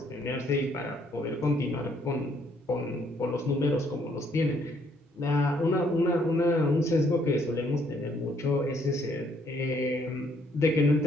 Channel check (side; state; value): both; normal; correlation 0.68